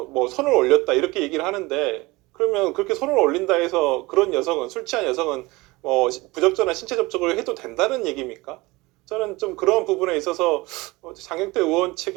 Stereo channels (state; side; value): quieter; left; 22.2 dB